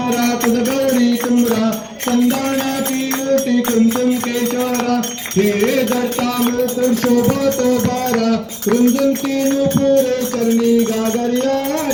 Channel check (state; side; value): identical; both; correlation 1.00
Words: तुझ गौरी तुमरा संदाना की मूर्ति कुंकुम केशरा हे दत्ता मुकुर शोभा तो बारा कुंदन की नुपुर करनी गागरिया।